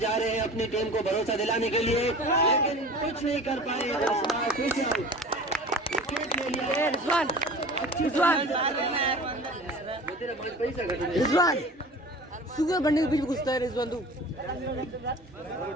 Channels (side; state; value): both; normal; correlation 0.39